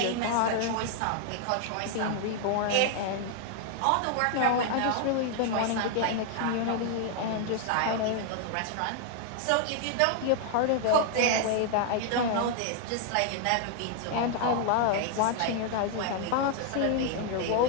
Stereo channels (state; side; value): different; both; correlation 0.00